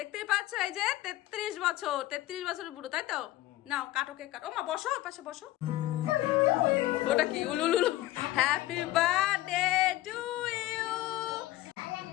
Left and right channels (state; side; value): quieter; right; 16.1 dB